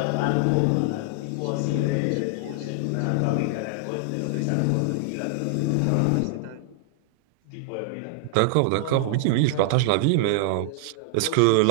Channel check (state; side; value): different; both; correlation 0.00